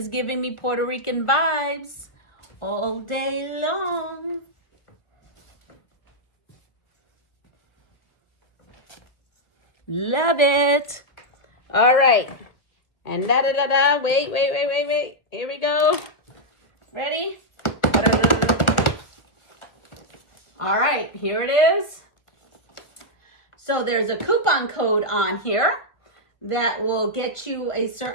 giving me Puerto Rican vibes all day long. Love it. All right. And da-da-da-da. Wait. Here we go. Ready? All right, here it is. So there's a coupon code on here that will get you a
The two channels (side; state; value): right; late; 1.6 ms